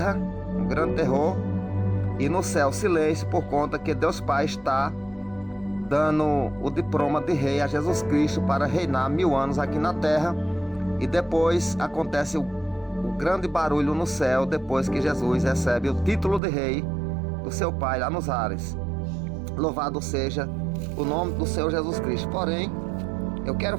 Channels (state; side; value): drops out; left; at 16.4 s